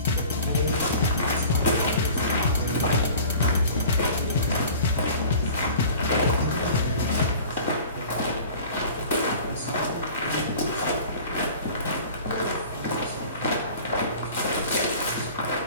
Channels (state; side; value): inverted; both; correlation -0.44